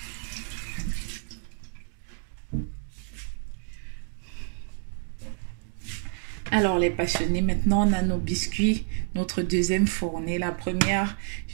Alors les passionnés, maintenant on a nos biscuits, notre deuxième fournée. La première,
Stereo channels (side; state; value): left; silent; digital silence